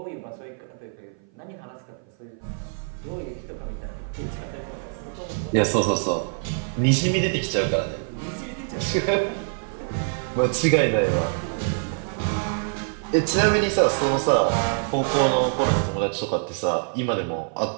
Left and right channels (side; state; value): left; silent; 56 dB below the other